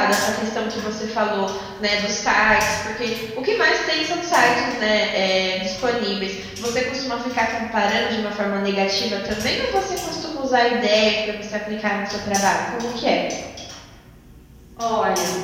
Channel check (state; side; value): identical; both; correlation 1.00